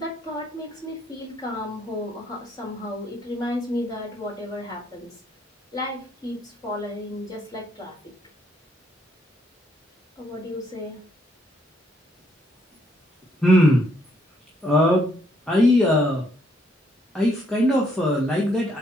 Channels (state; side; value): normal; both; correlation 0.71